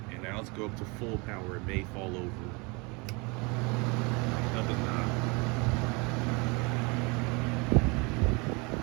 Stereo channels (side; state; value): left; quieter; 28.7 dB